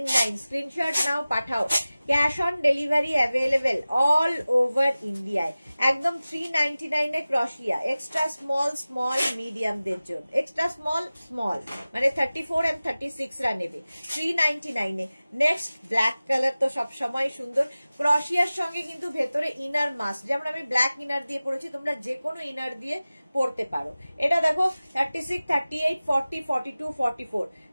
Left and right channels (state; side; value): inverted; both; correlation -0.97